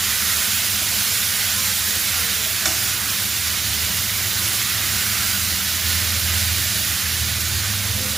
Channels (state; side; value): quieter; left; 4.0 dB